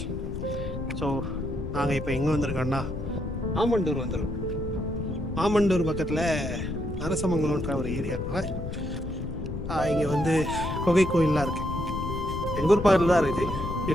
So நாங்கள் இப்போ எங்கே வந்திருக்கோன்னா ஆமண்டூர் வந்துருக்கோம். ஆமண்டூர் பக்கத்தில் நரசமங்கலம்ன்ற ஒரு ஏரியாவில் இங்கே வந்து குகை கோயிலெலாம் இருக்குது. எங்கள் ஊர் பக்கத்தில் தான் இருக்குது.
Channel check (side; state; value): left; noise; rumble, 5 dB below the sound